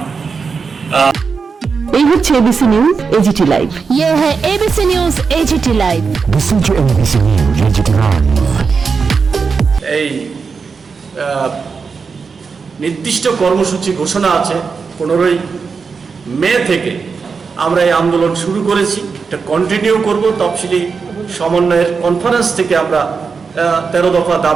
এই হচ্ছে এবিসি নিউজ এজিটি লাইভ। ये है ABC news AGT live. Listen to ABC News AGT Live। এই নির্দিষ্ট কর্মসূচি ঘোষণা আছে 15ই মে থেকে আমরা এই আন্দোলন শুরু করেছি, এটা কন্টিনিউ করব। তফসিলি সমন্বয়ের কনফারেন্স থেকে আমরা 13 দফা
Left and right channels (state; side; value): quieter; left; 5.2 dB